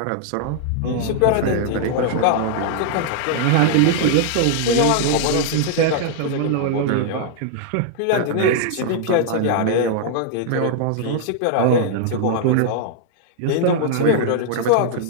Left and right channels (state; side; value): different; both; correlation -0.01